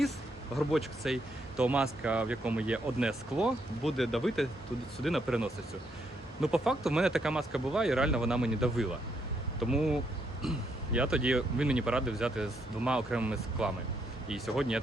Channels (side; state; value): both; normal; correlation 0.76